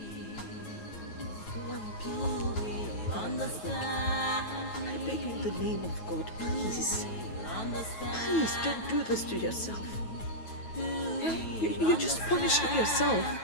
I beg you in the name of God, please. Please don't do this to yourself. You're just punishing yourself.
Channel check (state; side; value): late; right; 9.2 ms